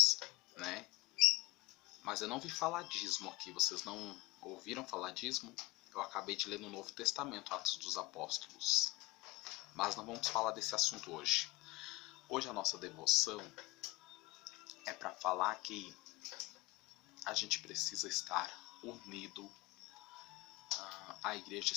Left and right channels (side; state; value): right; quieter; 21.6 dB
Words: né? Mas eu não vi falar dízimo aqui, vocês não ouviram falar dízimo? Eu acabei de ler no Novo Testamento, Atos dos Apóstolos. Mas não vamos falar desse assunto hoje. Hoje a nossa devoção é para falar que a gente precisa estar unido. A igreja